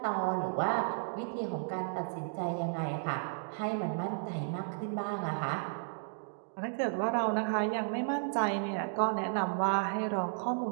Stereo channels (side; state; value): left; silent; digital silence